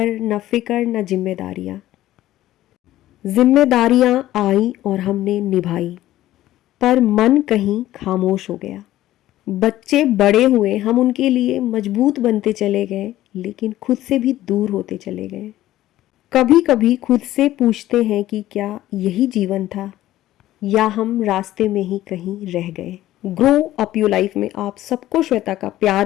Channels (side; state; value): right; quieter; 14.5 dB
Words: न फिक्र न जिम्मेदारियां। जिम्मेदारियां आई और हमने निभाई, पर मन कहीं खामोश हो गया। बच्चे बड़े हुए, हम उनके लिए मजबूत बनते चले गए, लेकिन खुद से भी दूर होते चले गए। कभी कभी खुद से पूछते हैं कि क्या यही जीवन था, या हम रास्ते में ही कहीं रह गए। ग्रो अप योर लाइफ में आप सबको श्वेता का